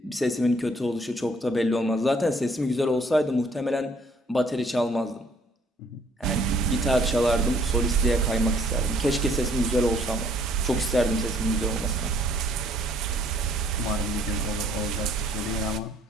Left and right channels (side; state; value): both; normal; correlation 0.62